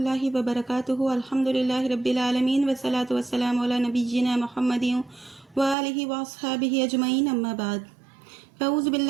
वबरकातुहु अल्हम्दुलिल्लाहि रब्बिल आलमीन वस्सलातु वस्सलामु अला नबिय्यिना मुहम्मदिन व आलिहि व अस्हाबिहि अजमईन अम्मा बाद फ़अऊज़ु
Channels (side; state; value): left; drops out; at 5.8 s